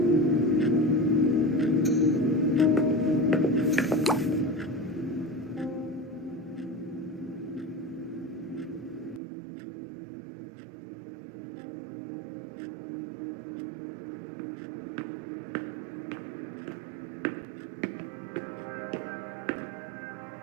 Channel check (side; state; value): left; drops out; at 9.2 s